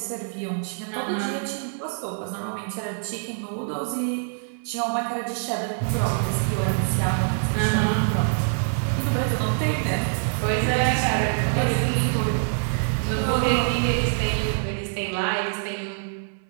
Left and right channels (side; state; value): left; silent; 59 dB below the other